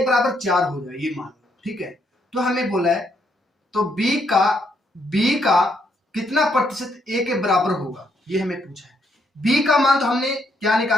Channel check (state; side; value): normal; both; correlation 0.74